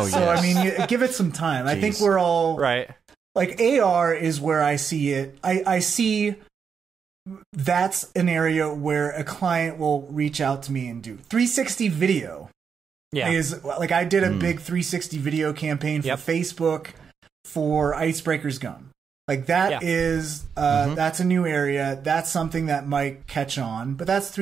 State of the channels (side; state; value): left; quieter; 6.5 dB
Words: so, I mean, give it some time. Jeez. I think we're all right. Like AR is where I see it. I see that's an area where a client will reach out to me and do 360 video. Yeah. Is like I did a big 360 video campaign for Facebook for Icebreaker's Gum. Like that is that's a new area. That's something that might catch on. But that's